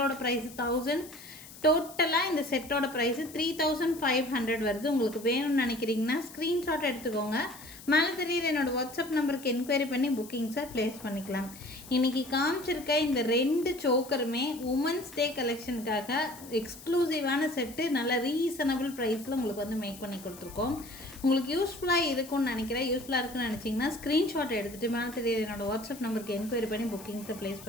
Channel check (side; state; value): left; noise; hiss, 17 dB below the sound